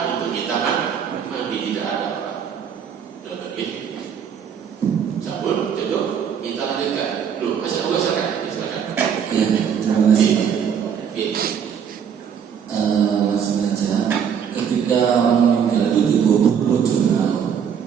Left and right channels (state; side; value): quieter; left; 7.7 dB